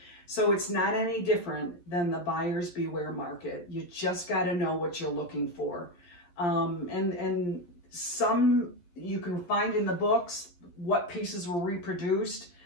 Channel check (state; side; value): late; right; 11 ms